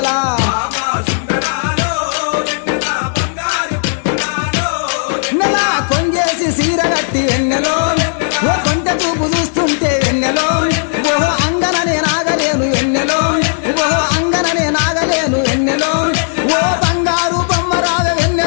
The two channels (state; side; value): silent; right; digital silence